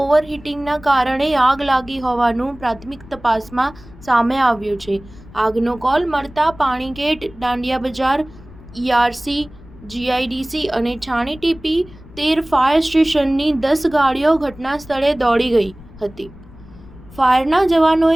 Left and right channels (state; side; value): noise; left; rumble, 20 dB below the sound